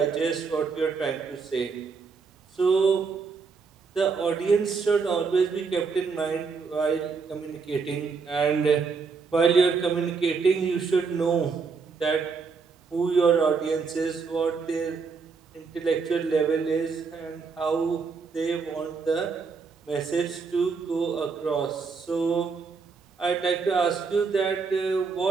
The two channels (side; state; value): left; quieter; 5.0 dB